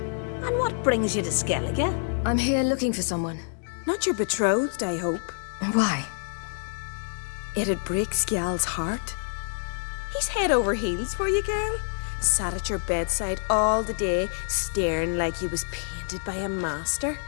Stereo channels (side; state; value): right; silent; digital silence